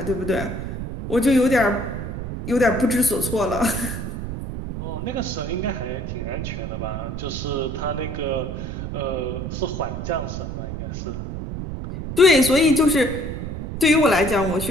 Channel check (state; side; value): noise; right; rumble, 6 dB below the sound